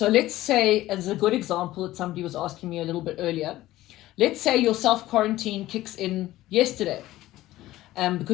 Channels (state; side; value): quieter; right; 16.0 dB